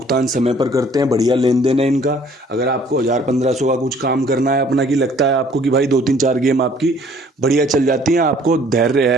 समय पर करते हैं, बढ़िया लेन देन है इनका। अगर आपको 1000-1500 का कुछ काम करना है अपना, की लगता है आपको कि भाई 2-3-4 गेम आपकी बढ़िया चल जाती हैं, आपको धैर्य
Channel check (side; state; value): both; normal; correlation 0.57